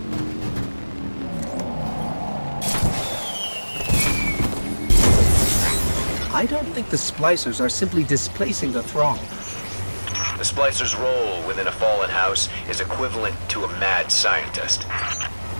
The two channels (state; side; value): inverted; both; correlation -1.00